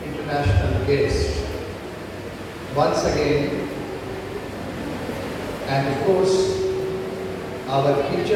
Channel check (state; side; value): identical; both; correlation 1.00